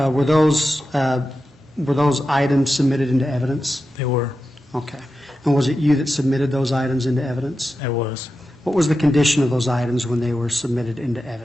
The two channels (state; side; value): normal; both; correlation 0.91